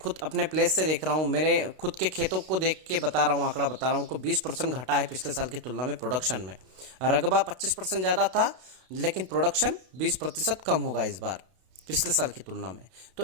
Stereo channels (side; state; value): left; late; 32 ms